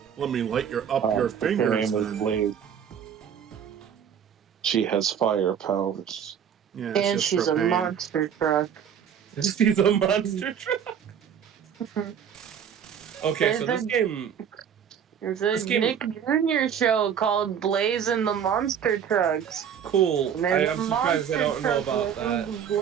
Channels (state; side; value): quieter; left; 8.3 dB